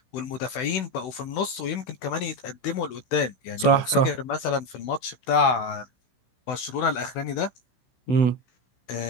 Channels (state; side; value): late; right; 16 ms